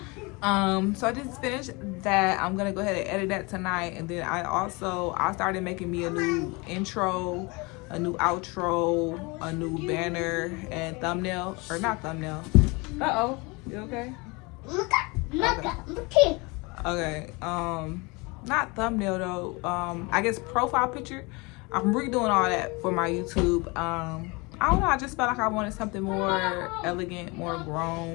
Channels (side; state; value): right; quieter; 27.0 dB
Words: So I just finished that. I'm gonna go ahead and edit that tonight, and then I started making me a new intro, a new outro, a new banner and thumbnail, or not thumbnail. Uh-oh, you okay? Okay. Not thumbnail though. I guess profile picture. I'm redoing all that for my YouTube. I don't know, I just felt like I wanted something more elegant, more